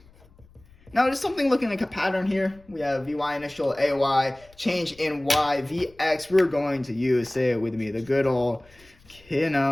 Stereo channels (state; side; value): noise; left; rumble, 28 dB below the sound